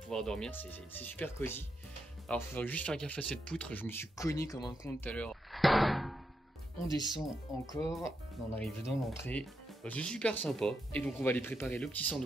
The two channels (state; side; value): normal; both; correlation 0.83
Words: dormir, c'est super cosy. Alors il faudrait juste faire gaffe à cette poutre, je me suis cogné comme un con tout à l'heure. On descend encore, on arrive dans l'entrée. C'est super sympa. Et donc on va aller préparer le petit